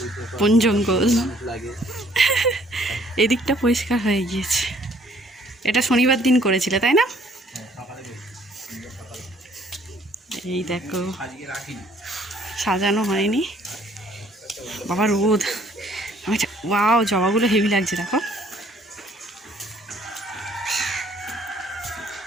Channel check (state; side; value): normal; both; correlation 0.61